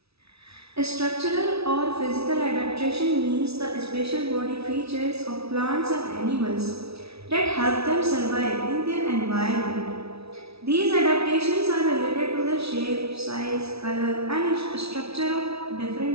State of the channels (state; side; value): late; left; 0.78 ms